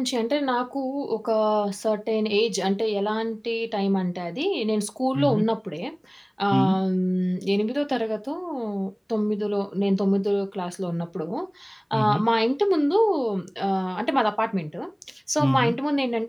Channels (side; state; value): both; identical; correlation 1.00